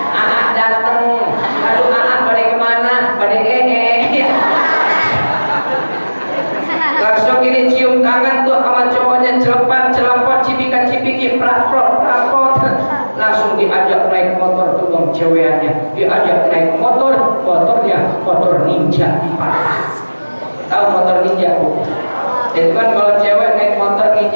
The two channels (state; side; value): inverted; both; correlation -1.00